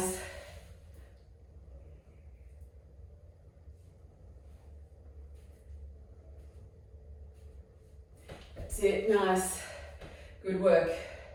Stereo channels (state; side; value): identical; both; correlation 1.00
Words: That's it. Nice. Good work.